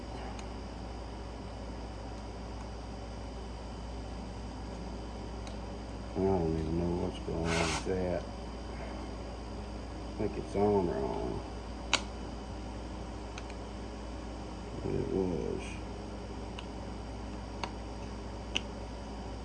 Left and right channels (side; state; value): both; identical; correlation 1.00